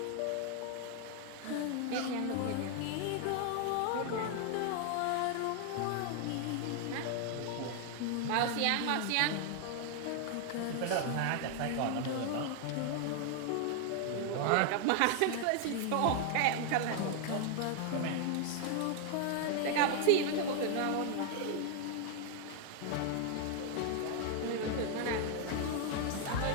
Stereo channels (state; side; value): different; both; correlation 0.00